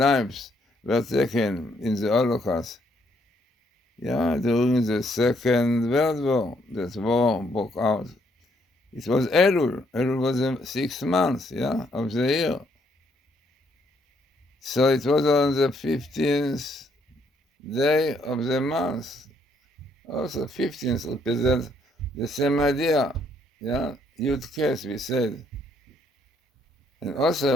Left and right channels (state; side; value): normal; both; correlation 0.71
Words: were taken in the Holocaust. During the Second World War, that war broke out. It was Elul. Elul was the 6th month, of the year. So it was on the 15th day of the month. Also, 15th represents the same idea, Yud Kes, we said. And